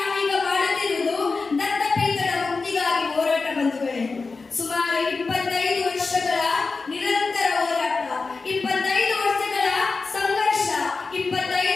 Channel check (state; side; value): quieter; right; 4.2 dB